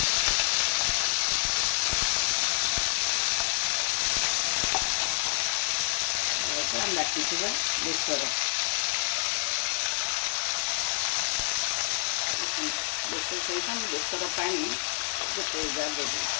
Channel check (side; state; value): right; silent; digital silence